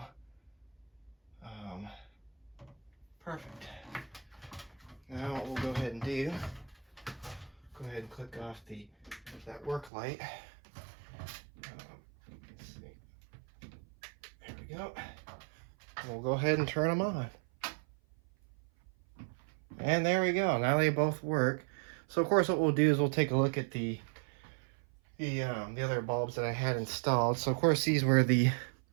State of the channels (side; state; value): left; drops out; at 9.9 s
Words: Perfect. Now what we'll go ahead and do, go ahead and click off that work light. Let's see. There we go. And we'll go ahead and turn them on. And there we go. Now they both work. So of course what we'll do is we'll take a look at the other bulbs that I had installed. So of course these were the